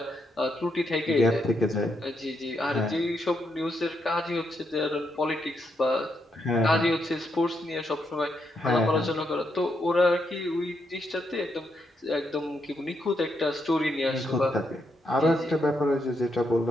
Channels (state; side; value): normal; both; correlation 0.79